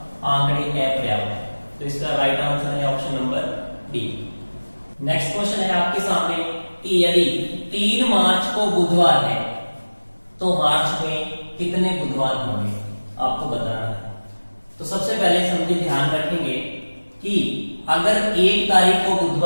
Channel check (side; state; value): both; inverted; correlation -1.00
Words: आंकड़े अपर्याप्त। तो इसका राइट आंसर है option number D. Next question है आपके सामने कि यदि 3 मार्च को बुधवार है तो मार्च में कितने बुधवार होंगे, आपको बताना है। तो सबसे पहले समझिए, ध्यान रखेंगे कि अगर 1 तारीख को